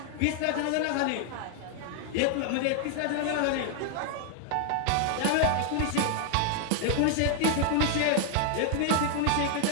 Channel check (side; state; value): both; different; correlation 0.00